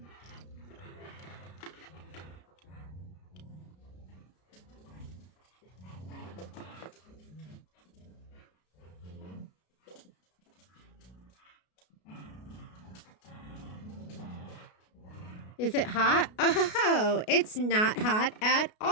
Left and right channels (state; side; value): late; right; 33 ms